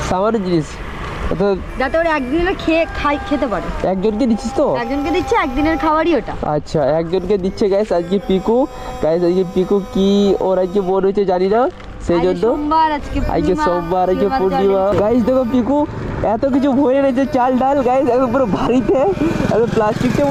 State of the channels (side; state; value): both; identical; correlation 1.00